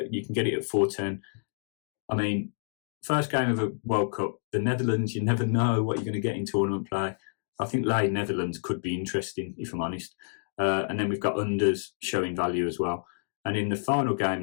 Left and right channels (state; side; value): silent; right; digital silence